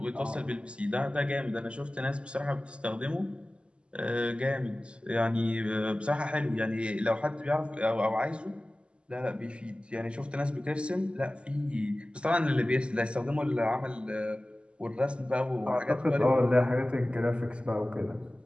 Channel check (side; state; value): left; late; 0.054 ms